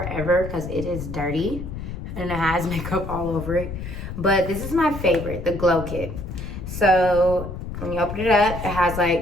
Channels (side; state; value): left; noise; rumble, 8 dB below the sound